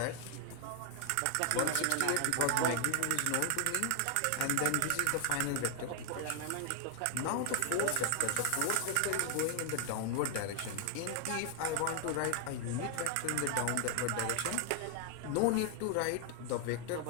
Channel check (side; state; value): both; different; correlation 0.00